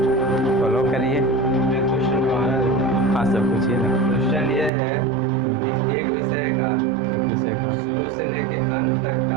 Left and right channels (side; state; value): left; drops out; at 4.7 s